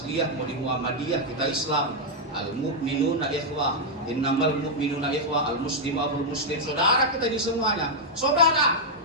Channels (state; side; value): normal; both; correlation -0.03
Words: mau di Muhammadiyah, kita Islam. Al-mu'minuna ikhwah, innamal mu'minuna ikhwah, al-muslimu aqul muslim. Saudara kita ini semuanya. Saudara.